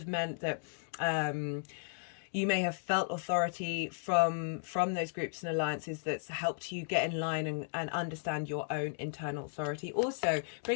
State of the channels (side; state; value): right; silent; digital silence